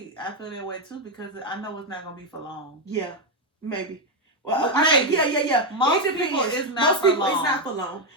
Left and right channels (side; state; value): both; normal; correlation 0.05